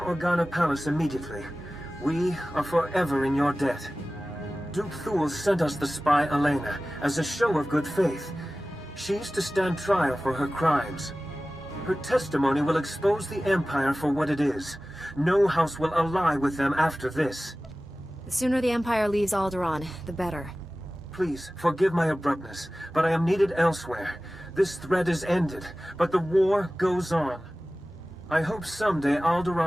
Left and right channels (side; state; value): both; normal; correlation 0.96